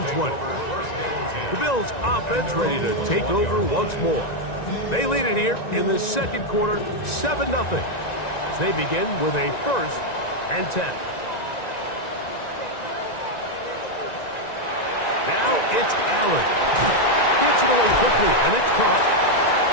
20. The Bills offense ready to take over once more. They lead it here in the second quarter, 7-0, as they begin with a 1st and 10. Now it's Allen. Gets it away quickly, and it's caught.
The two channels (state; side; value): late; right; 1.9 ms